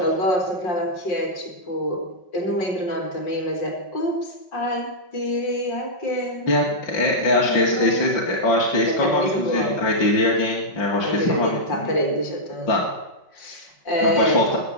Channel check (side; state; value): right; late; 5.3 ms